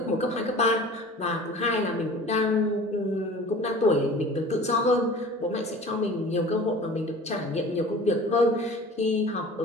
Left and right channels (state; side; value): normal; both; correlation 0.42